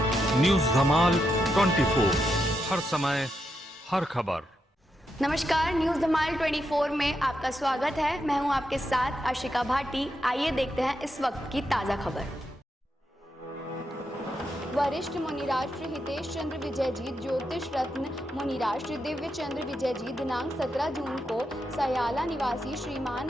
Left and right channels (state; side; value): normal; both; correlation 0.83